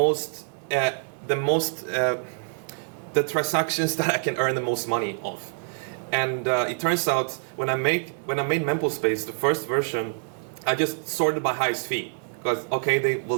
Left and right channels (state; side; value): silent; left; 61 dB below the other